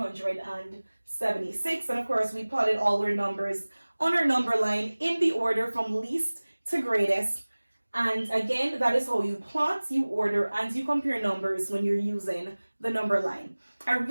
and of course we plotted all our numbers on our number line in the order from least to greatest. And again, that is how you plot, you order, and you compare numbers when you're using the number line. I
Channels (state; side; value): inverted; both; correlation -1.00